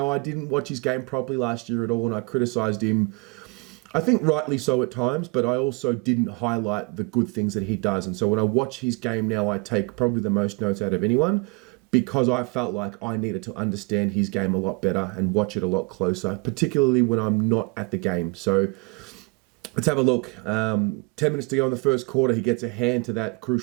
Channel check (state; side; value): quieter; left; 30.5 dB